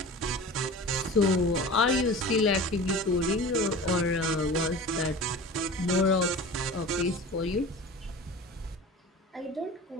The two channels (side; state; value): both; normal; correlation 0.36